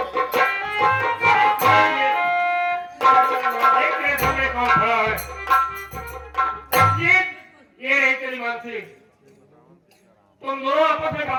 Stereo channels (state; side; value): identical; both; correlation 1.00